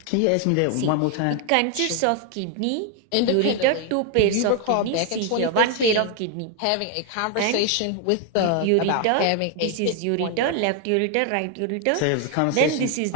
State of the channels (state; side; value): different; both; correlation 0.01